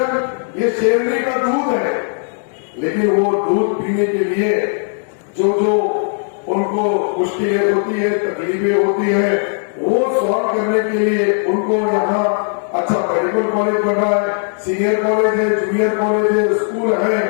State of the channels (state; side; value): silent; right; digital silence